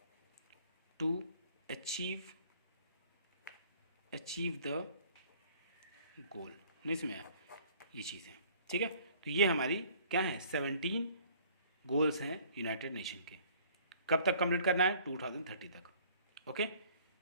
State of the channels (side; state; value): both; inverted; correlation -0.55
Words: to achieve the goal. नहीं समझ आया, ये चीज़ है। ठीक है। तो ये हमारी क्या है, 17 गोल्स हैं यूनाइटेड नेशन के। कब तक कंप्लीट करना है, 2030 तक। ओके।